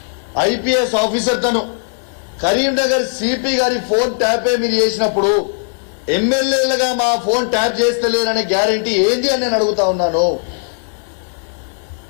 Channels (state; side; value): silent; right; digital silence